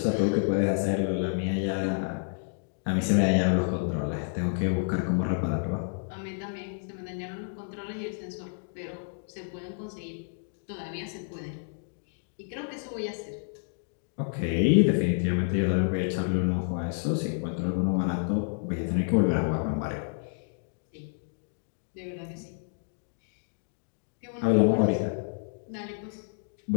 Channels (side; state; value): right; silent; digital silence